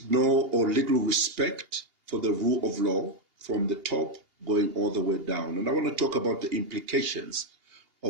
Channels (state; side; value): late; left; 2.8 ms